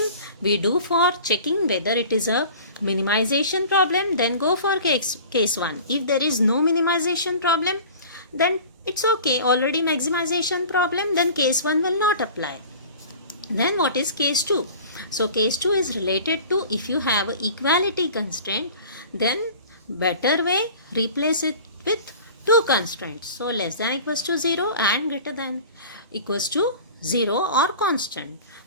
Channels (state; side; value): inverted; both; correlation -0.42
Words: we do for checking whether it is a minimization problem, then go for case 1. If there is no minimization problem, then it's okay, already maximization problem, then case 1 will not apply. Then what is case 2? So case 2 is related to if you have an equality constraint, then better way, replace it with two constraints. So less than equals to 0 and greater than equals to 0 or constant.